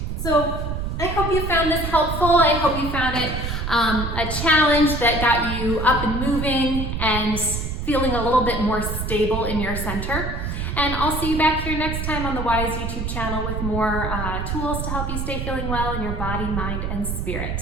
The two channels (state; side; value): noise; right; rumble, 3 dB below the sound